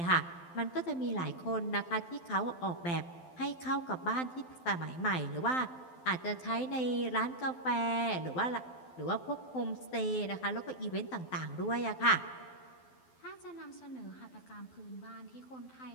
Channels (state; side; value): late; right; 12 ms